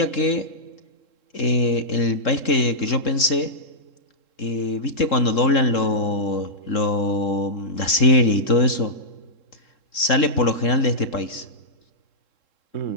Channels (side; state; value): right; late; 3.7 ms